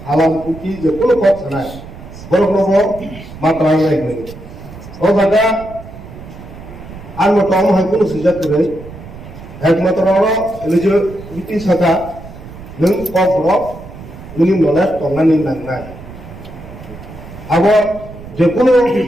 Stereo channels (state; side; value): noise; right; rumble, 15 dB below the sound